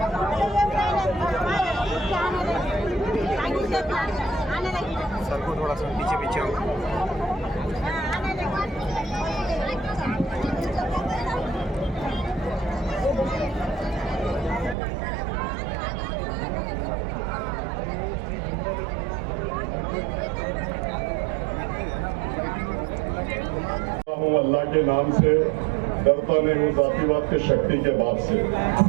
सर को थोड़ा सा पीछे पीछे हो। अल्लाह के नाम से डरता नहीं हूँ, जातिवाद के शक्ति के बाप से।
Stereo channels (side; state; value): left; drops out; at 14.8 s